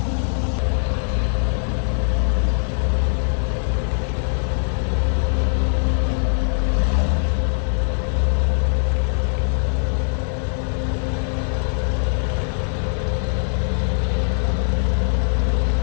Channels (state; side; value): silent; right; digital silence